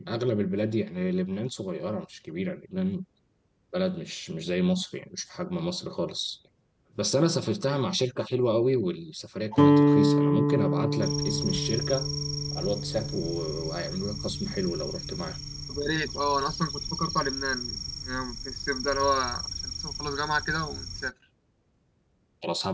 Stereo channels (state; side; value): identical; both; correlation 1.00